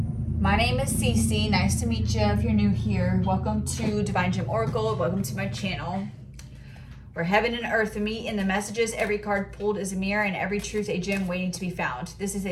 My name is Cece. Nice to meet you if you're new here. Welcome to Divine Gem Oracle. Welcome to my channel, where heaven and earth meet in the messages. Every card pulled is a mirror and every truth a gem waiting to be found. This is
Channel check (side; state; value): both; identical; correlation 1.00